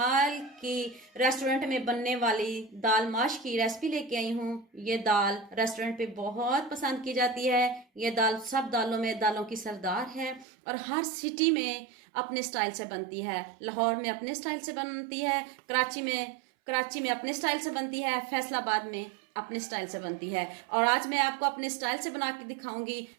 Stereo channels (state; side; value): drops out; left; at 10.5 s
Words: की रेस्टोरेंट में बनने वाली दाल माश की रेसिपी लेके आई हूँ। ये दाल रेस्टोरेंट पे बहुत पसंद की जाती है। ये दाल सब दालों में दालों की सरदार है और हर सिटी में अपने स्टाइल से बनती है। लाहौर में अपने स्टाइल से बनती है, कराची में अपने स्टाइल से बनती है, फैसलाबाद में अपने स्टाइल से बनती है। और आज मैं आपको अपने स्टाइल से बना के दिखाऊंगी।